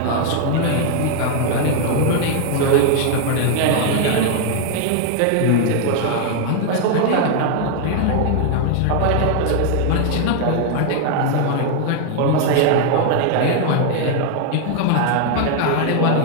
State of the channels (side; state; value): both; different; correlation 0.00